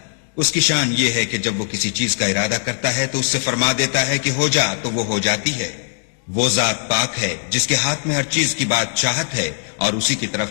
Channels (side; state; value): right; silent; 58 dB below the other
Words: اس کی شان یہ ہے کہ جب وہ کسی چیز کا ارادہ کرتا ہے تو اس سے فرما دیتا ہے کہ ہو جا، تو وہ ہو جاتی ہے۔ وہ ذات پاک ہے جس کے ہاتھ میں ہر چیز کی بادشاہت ہے، اور اسی کی طرف